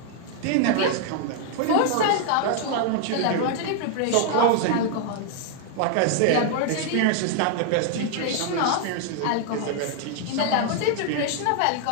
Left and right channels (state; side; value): different; both; correlation 0.00